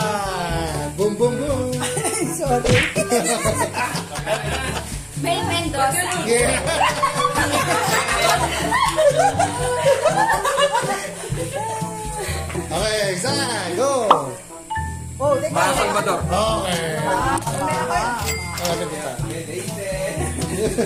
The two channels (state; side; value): identical; both; correlation 1.00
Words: Boom. Sorry. May Mendoza. Yeah. Okay, isa, go. Oh, teka. Salvador. Okay. Ano kita?